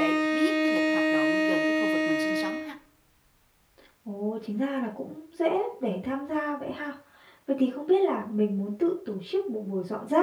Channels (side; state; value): both; identical; correlation 1.00